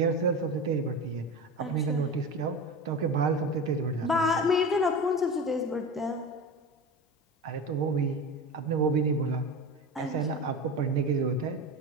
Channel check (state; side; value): normal; both; correlation 0.28